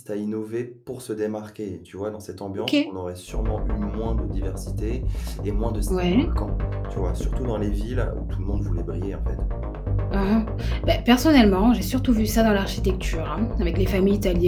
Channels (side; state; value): both; identical; correlation 1.00